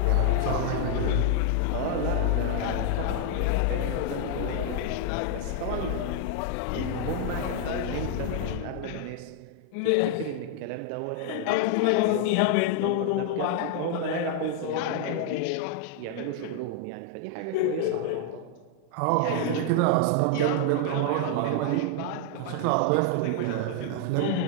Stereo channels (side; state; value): both; different; correlation 0.00